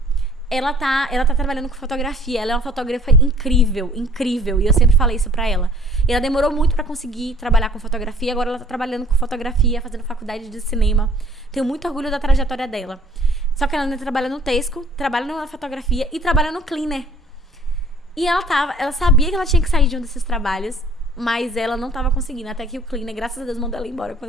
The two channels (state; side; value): normal; both; correlation 0.55